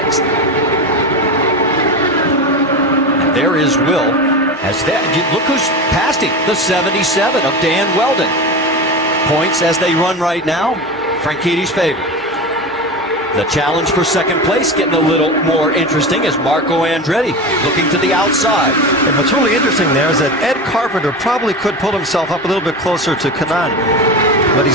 And there is Will. Look who's passed him, the 77 of Dan Weldon. Points as they run right now, Franchitti's favorite. The challenge for second place getting a little more interesting as Marco Andretti looking to the outside. And what's really interesting there is that Ed Carpenter probably could pull himself up a little bit closer to Kanaan, but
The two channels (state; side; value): normal; both; correlation 0.24